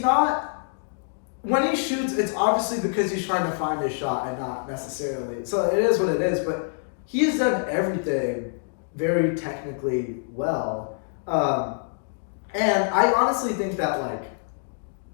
When he shoots, it's obviously because he's trying to find his shot and not necessarily. So it is what it is. But he has done everything very technically well. And I honestly think that like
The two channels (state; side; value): silent; right; digital silence